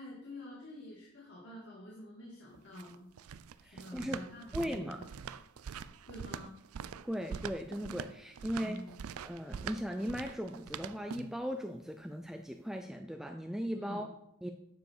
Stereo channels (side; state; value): both; normal; correlation 0.80